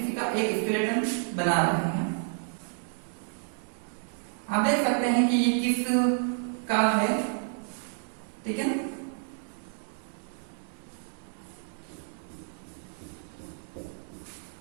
का एक स्केलेटन बना रहे हैं, आप देख सकते हैं कि ये किस का है। ठीक है ना,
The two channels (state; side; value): silent; left; 58 dB below the other